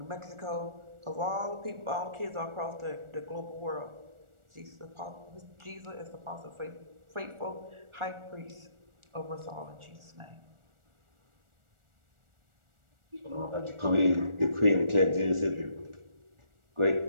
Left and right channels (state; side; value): late; left; 1.4 ms